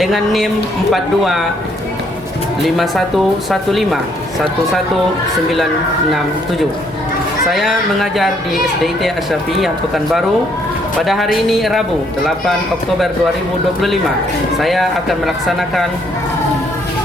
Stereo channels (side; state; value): both; normal; correlation 0.68